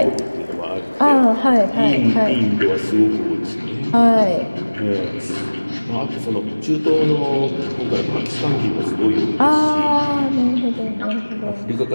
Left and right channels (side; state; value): both; inverted; correlation -1.00